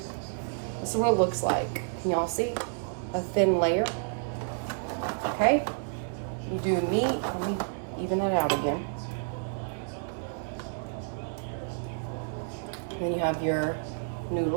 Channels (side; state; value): left; silent; 58 dB below the other